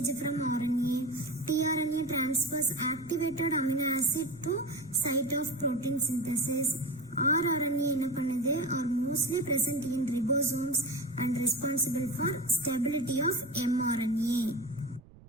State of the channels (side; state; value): right; noise; rumble, 23 dB below the sound